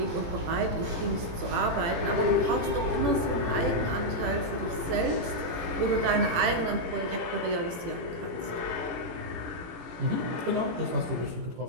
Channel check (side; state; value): left; late; 18 ms